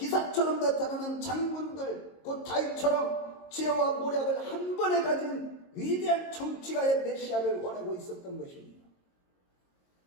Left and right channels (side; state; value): right; late; 22 ms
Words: 나타나는 장군들, 곧 다윗처럼 지혜와 모략을 한 번에 가진 위대한 정치가의 메시아를 원하고 있었던 것입니다.